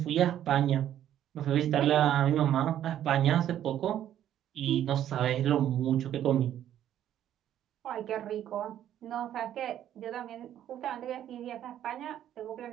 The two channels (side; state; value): left; quieter; 11.2 dB